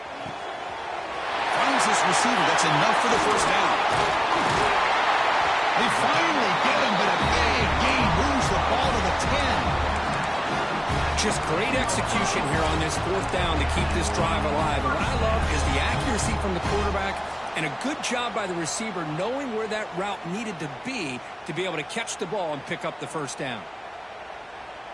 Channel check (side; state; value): both; identical; correlation 1.00